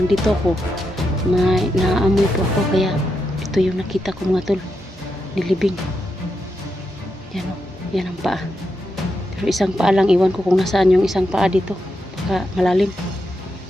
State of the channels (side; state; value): both; normal; correlation 0.85